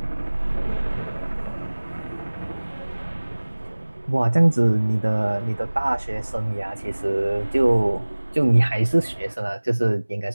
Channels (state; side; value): inverted; both; correlation -1.00